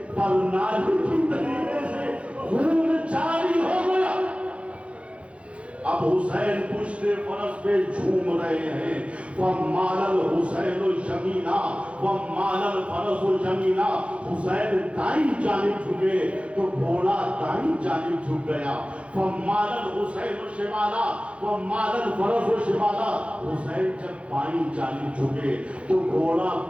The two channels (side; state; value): left; late; 0.061 ms